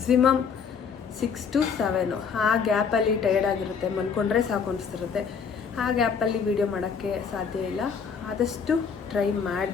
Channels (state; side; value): quieter; right; 6.2 dB